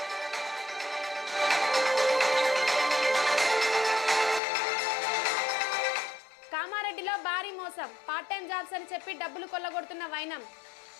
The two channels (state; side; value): drops out; right; at 4.4 s